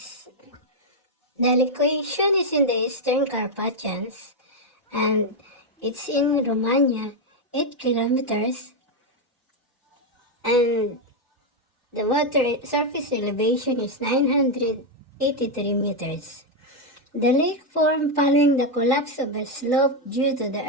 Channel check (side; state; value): both; normal; correlation 0.03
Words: The location is in the Eastern Carpathians and it's in Romania, 8 kilometers, and the water surface elevation is 983 meters. The lake formed following the collapse of a slope due to the